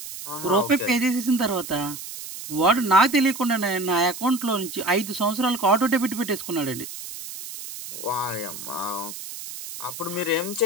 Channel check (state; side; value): noise; right; hiss, 10 dB below the sound